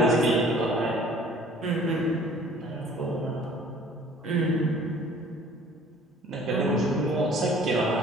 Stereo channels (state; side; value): normal; both; correlation 0.52